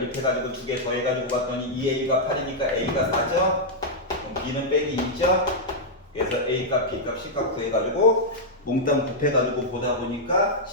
두 개 더해가지고 봤더니 2A가 8이니까 A가 4죠? 그럼 B는 빼기 2죠? 그래서 A값, B값, C값 구해가지고 몽땅 곱해가지고 보다 보니까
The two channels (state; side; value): normal; both; correlation -0.05